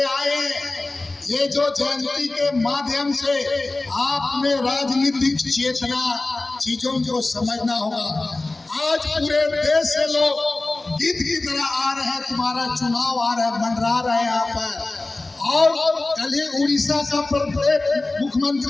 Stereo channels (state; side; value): quieter; right; 3.1 dB